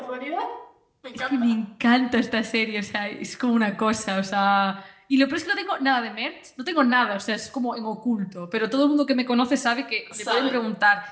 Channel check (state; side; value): identical; both; correlation 1.00